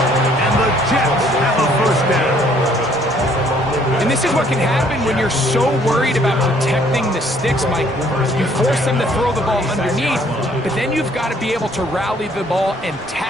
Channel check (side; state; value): both; normal; correlation 0.62